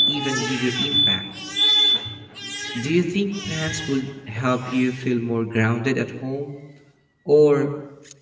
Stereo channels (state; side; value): identical; both; correlation 1.00